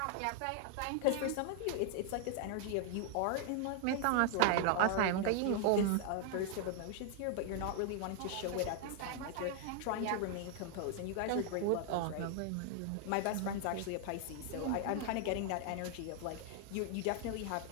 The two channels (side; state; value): both; different; correlation 0.00